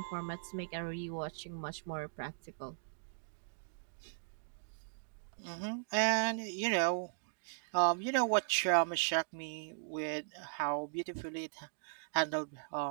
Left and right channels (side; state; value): left; silent; digital silence